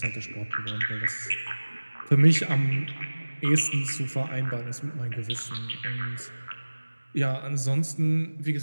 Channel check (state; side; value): inverted; both; correlation -1.00